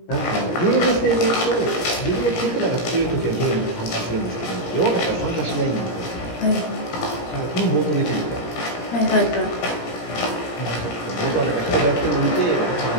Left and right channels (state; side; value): late; right; 17 ms